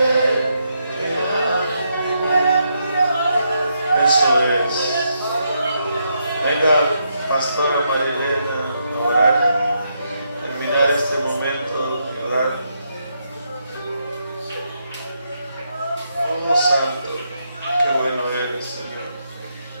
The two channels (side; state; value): both; inverted; correlation -0.79